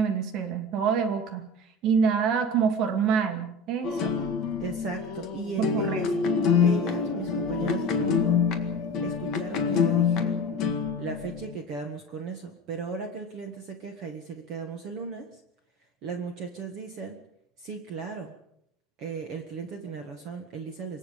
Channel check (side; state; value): both; normal; correlation 0.32